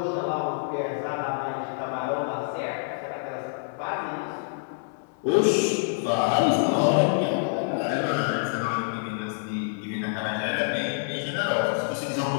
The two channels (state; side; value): silent; right; digital silence